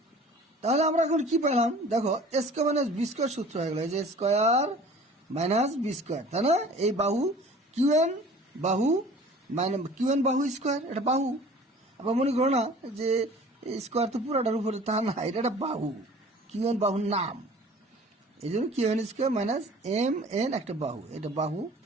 তাহলে আমরা এখন কি পেলাম দেখো, A square minus B square সূত্র হয়ে গেল, এই যে স্কোয়ার মাইনাস বি স্কোয়ার, তাই না? এই বাহু কিউ এন বাহু মাইনাস কিউ এন বাহু স্কোয়ার, এটা বাহু। আবার মনে করো না যে স্কোয়ার তো পুরোটার উপরে, তা না, এটা একটা বাহু, কিউ এন বাহুর নাম, এই জন্য Q N square minus M N একটা বাহু, এটা বাহু।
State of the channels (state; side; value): normal; both; correlation 0.46